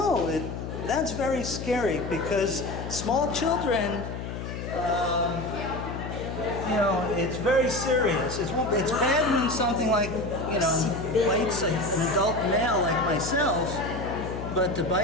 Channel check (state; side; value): noise; left; hum, 7 dB below the sound